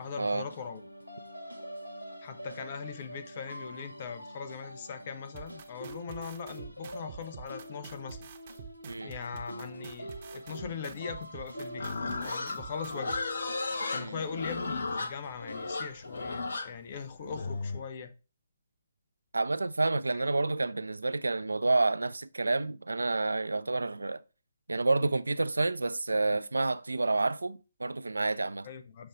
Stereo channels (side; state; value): both; inverted; correlation -0.91